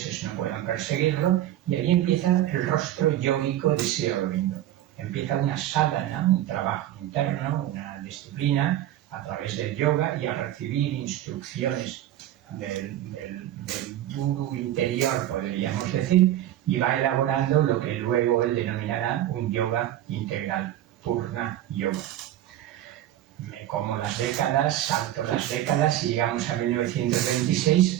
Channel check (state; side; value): quieter; left; 12.9 dB